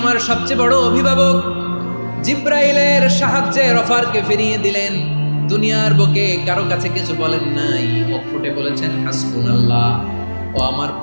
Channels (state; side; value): inverted; both; correlation -1.00